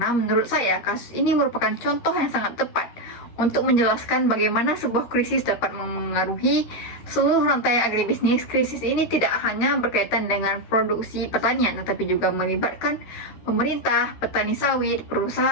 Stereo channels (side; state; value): right; late; 13 ms